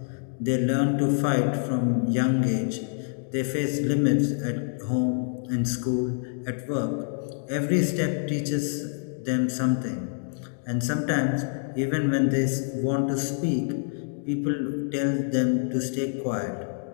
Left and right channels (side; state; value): right; silent; digital silence